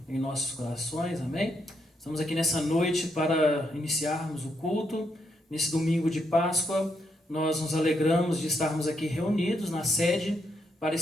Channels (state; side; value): normal; both; correlation 0.78